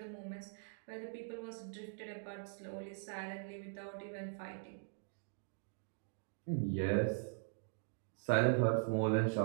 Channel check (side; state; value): left; silent; digital silence